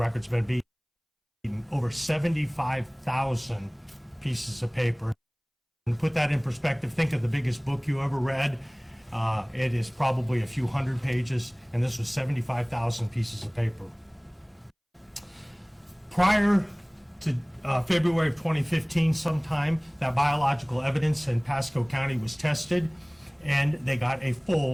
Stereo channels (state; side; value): identical; both; correlation 1.00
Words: been beaten. Over 75,000 pieces of paper. And to put that in perspective, think of the biggest book you ever read. It is probably a few hundred pages, and this was 75,000 pieces of paper. Prior to February of 2015 sometime, that biological evidence in Pasco County was tested, and they got a